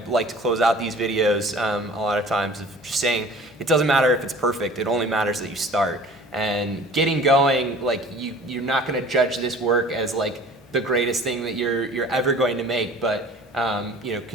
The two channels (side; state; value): both; normal; correlation 0.46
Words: like to close out these videos a lot of times, of just saying it doesn't matter if it's perfect. It only matters that you start. And getting going, like, you're not going to judge this work as, like, the greatest thing that you're ever going to make, but you know,